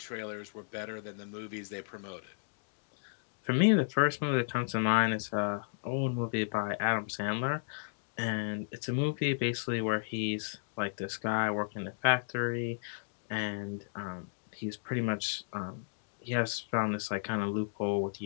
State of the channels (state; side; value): silent; right; digital silence